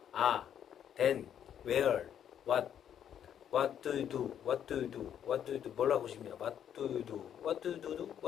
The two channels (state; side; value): quieter; right; 9.4 dB